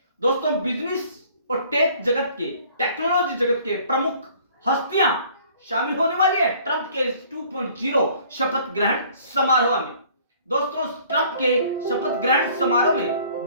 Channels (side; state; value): both; inverted; correlation -0.55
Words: दोस्तों बिजनेस और टेक्नोलॉजी जगत के प्रमुख हस्तियां शामिल होने वाली है ट्रंप के 2.0 शपथ ग्रहण समारोह में। दोस्तों ट्रंप के शपथ ग्रहण समारोह में